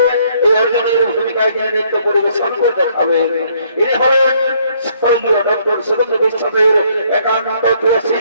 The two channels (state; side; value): inverted; both; correlation -0.66